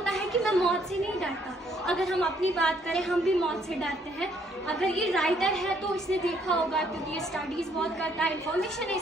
है कि मैं मौत से नहीं डरता। अगर हम अपनी बात करें, हम भी मौत से डरते हैं। अगर ये राइटर है तो इसने देखा होगा, क्योंकि ये स्टडीज बहुत करता है, इंफॉर्मेशन है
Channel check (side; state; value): both; normal; correlation 0.67